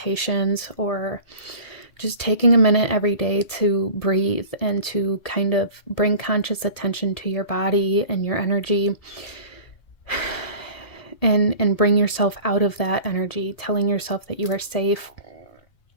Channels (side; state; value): right; late; 1.7 ms